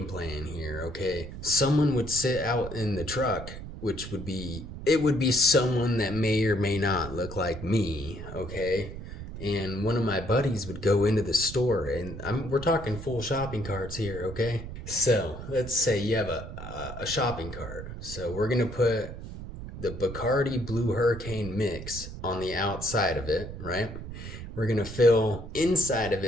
plan here, okay? Someone would sit out in the truck, which would be, it would be someone that may or may not look like me, okay? And one of my buddies would go into the store, and we're talking full shopping carts here, okay? So let's say you have a shopping cart. So we're gonna put the Bacardi Blue Hurricane mix on the outside of it, right? We're gonna fill inside of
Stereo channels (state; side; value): noise; right; rumble, 10 dB below the sound